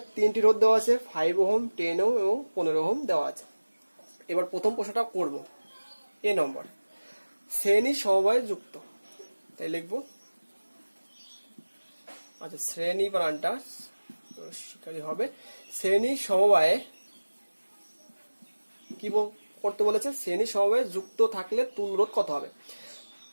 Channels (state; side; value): inverted; both; correlation -1.00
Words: তিনটি রোধ দেওয়া আছে, 5 ওহম, 10 ওহম এবং 15 ওহম দেওয়া আছে। এবার প্রথম প্রশ্নটা করব, এ নম্বর, শ্রেণী সমবায়ে যুক্ত, তাই লিখবো। আচ্ছা, শ্রেণী বানানটা শিকারী হবে। শ্রেণী সমবায়ে কি করতে বলেছে? শ্রেণী সমবায়ে যুক্ত থাকলে তুল্য রোধ কত হবে?